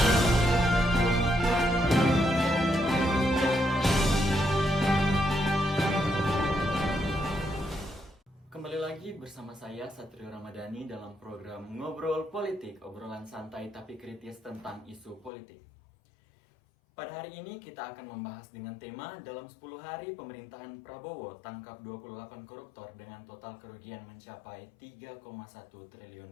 Kembali lagi bersama saya Satrio Ramadhani dalam program Ngobrol Politik, obrolan santai tapi kritis tentang isu politik. Pada hari ini kita akan membahas dengan tema dalam 10 hari pemerintahan Prabowo tangkap 28 koruptor dengan total kerugian mencapai 3,1 triliun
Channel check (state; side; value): drops out; right; at 15.3 s